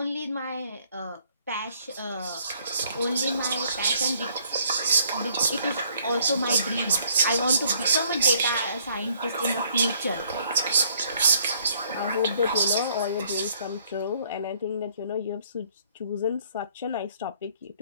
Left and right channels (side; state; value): both; inverted; correlation -0.64